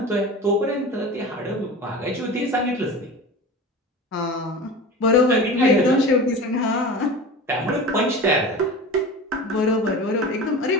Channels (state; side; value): normal; both; correlation 0.33